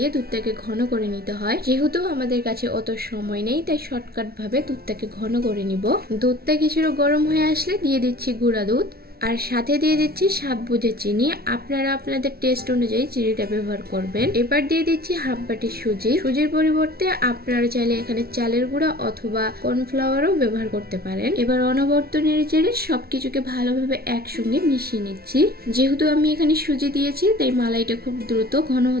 দুধটাকে ঘন করে নিতে হয়। যেহেতু আমাদের কাছে অত সময় নেই তাই শর্টকাট ভাবে দুধটাকে ঘন করে নিব। দুধটা কিছুটা গরম হয়ে আসলে দিয়ে দিচ্ছি গুঁড়া দুধ আর সাথে দিয়ে দিচ্ছি স্বাদ বুঝে চিনি। আপনারা আপনাদের টেস্ট অনুযায়ী চিনিটা ব্যবহার করবেন। এবার দিয়ে দিচ্ছি হাফ বাটি সুজি। সুজির পরিবর্তে আপনারা চাইলে এখানে চালের গুঁড়া অথবা কর্নফ্লাওয়ারও ব্যবহার করতে পারেন। এবার অনবরত নেড়ে সবকিছুকে ভালোভাবে একসঙ্গে মিশিয়ে নিচ্ছি। যেহেতু আমি এখানে সুজি দিয়েছি তাই মালাইটা খুব দ্রুত ঘন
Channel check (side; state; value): left; late; 0.44 ms